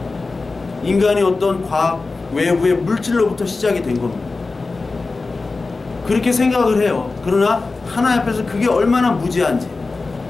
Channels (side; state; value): right; quieter; 3.8 dB